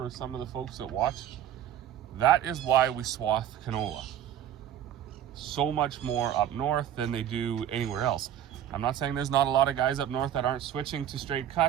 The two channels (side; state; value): left; quieter; 10.6 dB